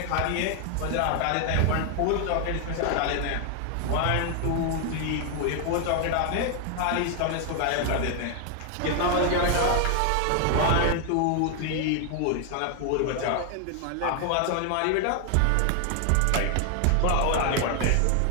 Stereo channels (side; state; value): both; different; correlation 0.00